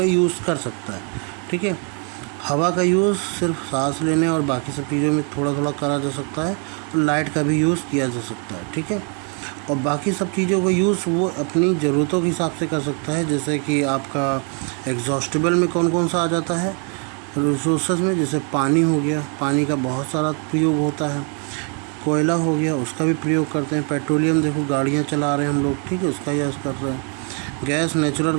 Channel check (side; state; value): left; quieter; 38.8 dB